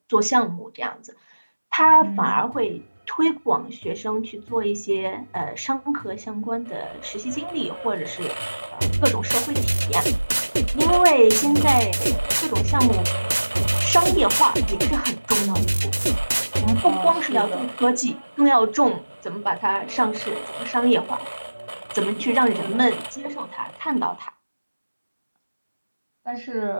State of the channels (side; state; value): both; inverted; correlation -1.00